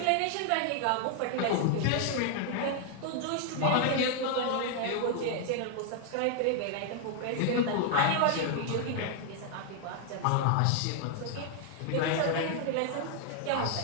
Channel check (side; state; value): both; different; correlation 0.00